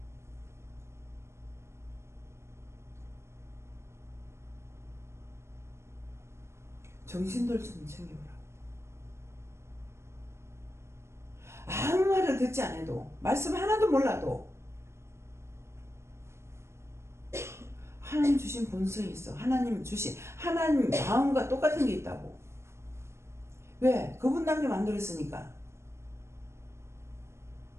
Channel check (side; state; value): left; late; 0.13 ms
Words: 정신들 좀 챙겨보라. 아무 말을 듣지 않아도, 말씀 하나도 몰라도 하나님 주신 본성이 있어. 하나님 주신 하나님 마음과 똑같은 게 있다고. 왜? 그분답게 만들었으니까.